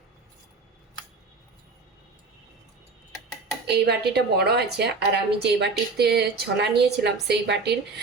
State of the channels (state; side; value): quieter; left; 4.0 dB